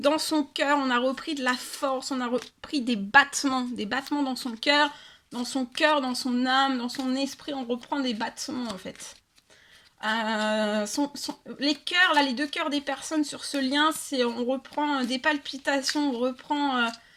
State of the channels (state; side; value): identical; both; correlation 1.00